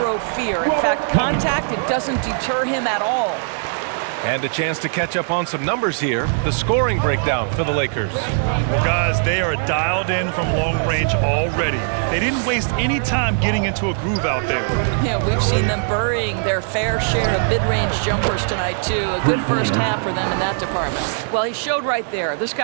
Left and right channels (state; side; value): silent; left; digital silence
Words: fear. In fact, contact, it doesn't deter him at all. And a chance to catch up on some numbers here. The scoring breakdown for the Lakers. Well, guys, they are dialed in from long range already. They didn't waste any time getting into a groove out there. Yeah, we've seen them burying their fair share of mid-range jumpers tonight, too. A good first half for them in that department. Well, he showed right there. This